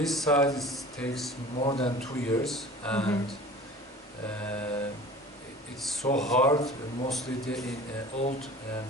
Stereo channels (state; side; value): normal; both; correlation 0.42